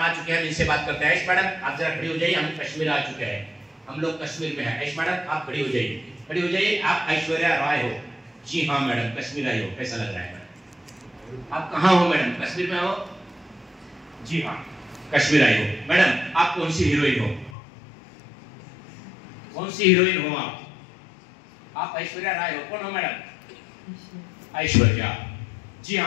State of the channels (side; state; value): right; drops out; at 17.6 s